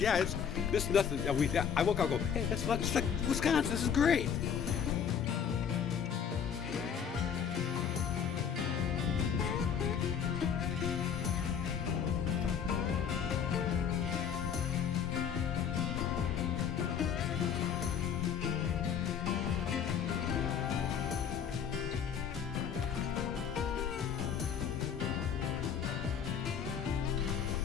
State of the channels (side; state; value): right; quieter; 7.6 dB